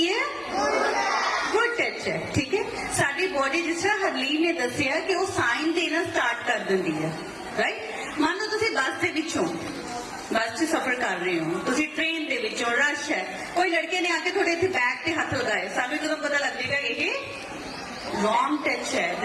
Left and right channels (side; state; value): both; identical; correlation 1.00